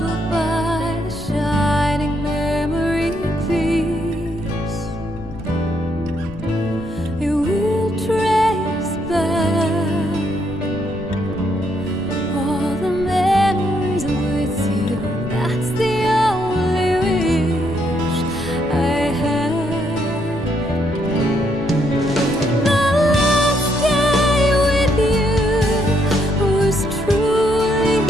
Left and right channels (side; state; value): left; noise; rumble, 15 dB below the sound